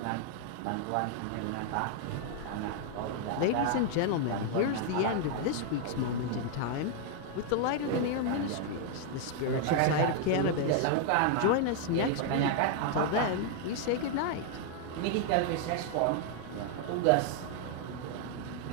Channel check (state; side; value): different; both; correlation 0.00